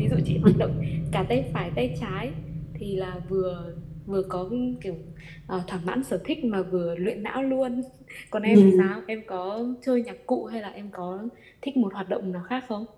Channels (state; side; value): identical; both; correlation 1.00